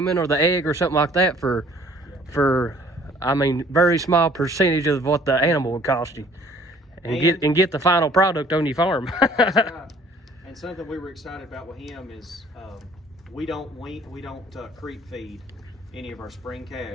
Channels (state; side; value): normal; both; correlation 0.55